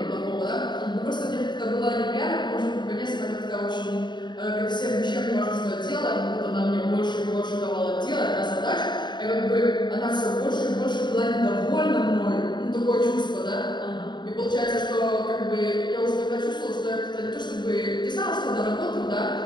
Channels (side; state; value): right; late; 0.22 ms